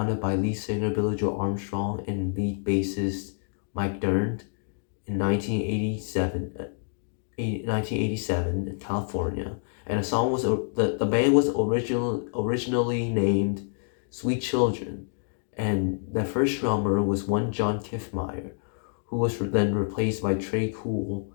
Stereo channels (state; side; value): silent; right; 60 dB below the other